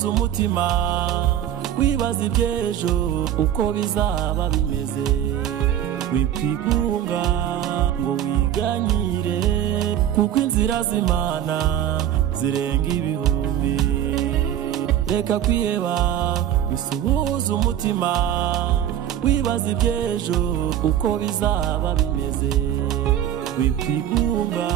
umutima wibaza iby'ejo uko bizaba bimeze wikwigunga ngo wiganyire kuko inzira z'Imana zirenga ibihumbi reka kwiheba bisuhuza umutima wibaza iby'ejo uko bizaba bimeze wikwigunga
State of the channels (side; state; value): left; quieter; 10.9 dB